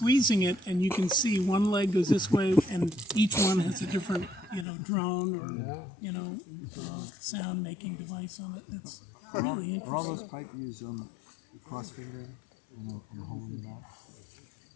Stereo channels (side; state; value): right; drops out; at 4.7 s